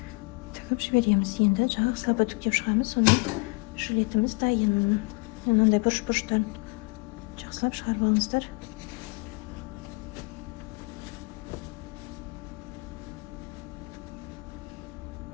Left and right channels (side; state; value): right; quieter; 29.6 dB